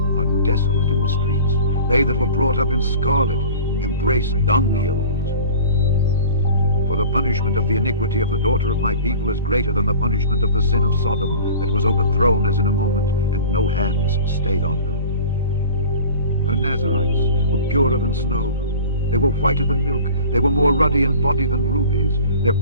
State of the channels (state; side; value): inverted; both; correlation -0.41